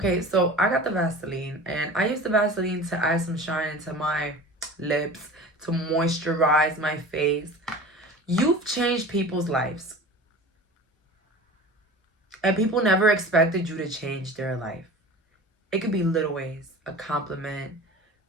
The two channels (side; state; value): both; normal; correlation 0.37